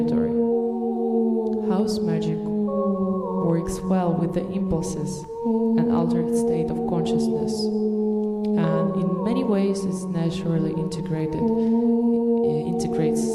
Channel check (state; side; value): identical; both; correlation 1.00